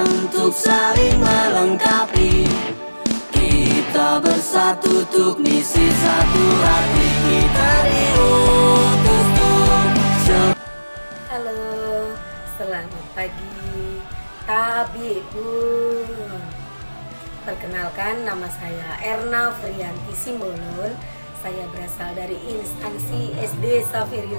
untuk saling melengkapi. Kita bersatu untuk misi satu hati, kita diutus untuk. Halo, selamat pagi Tabibun. Perkenalkan, nama saya Erna Frianti Simbolon. Saya berasal dari instansi SD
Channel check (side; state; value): both; inverted; correlation -1.00